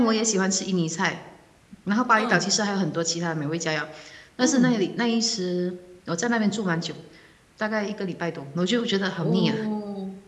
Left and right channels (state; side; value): identical; both; correlation 1.00